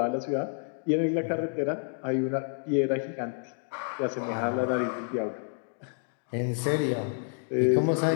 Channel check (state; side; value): silent; right; 58 dB below the other